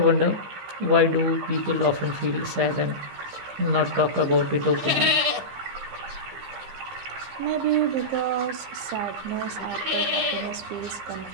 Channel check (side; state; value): left; late; 15 ms